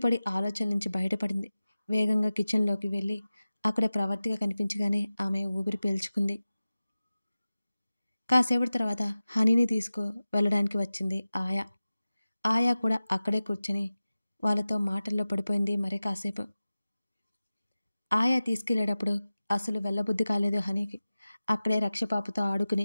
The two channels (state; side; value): inverted; both; correlation -0.96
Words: ఆలోచన నుంచి బయటపడింది. వేగంగా కిచెన్లోకి వెళ్ళి అక్కడ ప్రవర్తిక కనిపించగానే ఆమె ఊపిరి పీల్చుకుంది. కాసేపటి తర్వాత హనీని తీసుకు వెళ్ళడానికి వచ్చింది ఆయా. ఆయా కూడా అక్కడే కూర్చొని వాళ్ళతో మాటల్లో పడిపోయింది. మరి కాసేపు ఆయా తీసుకెళ్లేటప్పుడు అసలు వెళ్ళబుద్ధి కాలేదు హనీకి. అక్కడే రక్షపాపుతో ఆడుకుని